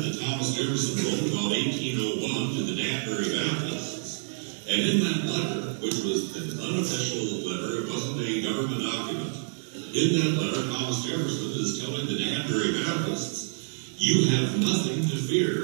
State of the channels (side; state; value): left; silent; digital silence